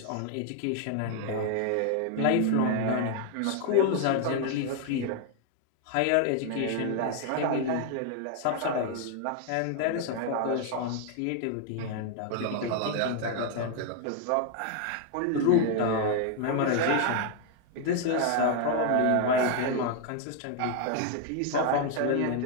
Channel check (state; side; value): different; both; correlation 0.00